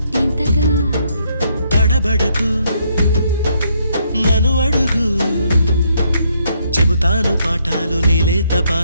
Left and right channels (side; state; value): both; inverted; correlation -0.73